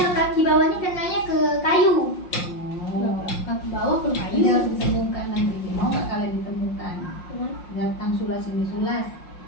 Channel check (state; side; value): late; right; 5.6 ms